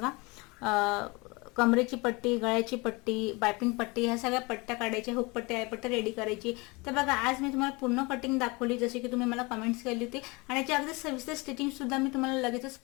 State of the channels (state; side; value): quieter; right; 26.0 dB